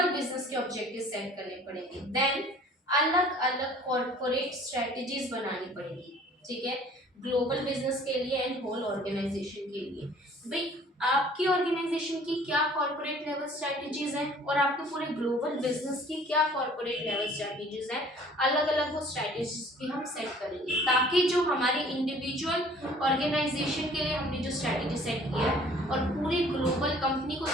बिजनेस के ऑब्जेक्टिव सेट करने पड़ेंगे। देन अलग अलग कॉर्पोरेट स्ट्रेटजीज बनानी पड़ेगी, ठीक है, ग्लोबल बिजनेस के लिए एंड होल ऑर्गेनाइजेशन के लिए। भाई आपकी ऑर्गेनाइजेशन की क्या कॉर्पोरेट लेवल स्ट्रेटजीज हैं और आपके पूरे ग्लोबल बिजनेस की क्या कॉर्पोरेट लेवल स्ट्रेटजीज हैं, अलग अलग वो स्ट्रेटजीज भी हम सेट करेंगे, ताकि जो हमारी इंडिविजुअल ऑर्गेनाइजेशन के लिए हमने जो स्ट्रेटजी सेट किया है और पूरी ग्लोबल कंपनी को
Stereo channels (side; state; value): both; normal; correlation 0.52